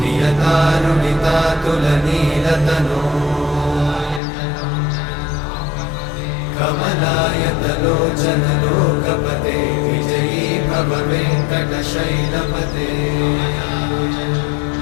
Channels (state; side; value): drops out; right; at 4.2 s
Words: कमलायतलोचनलोकपते विजयी भव वेङ्कटशैलपते